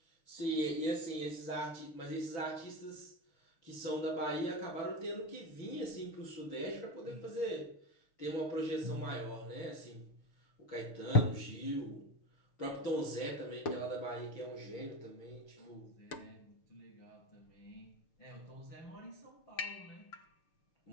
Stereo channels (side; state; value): right; late; 6.5 ms